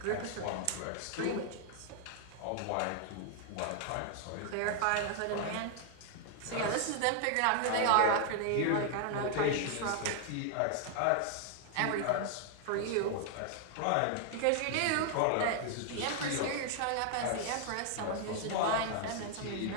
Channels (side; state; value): both; different; correlation 0.00